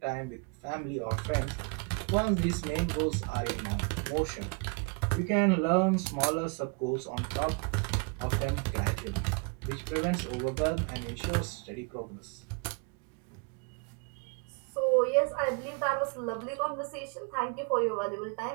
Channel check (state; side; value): quieter; left; 33.0 dB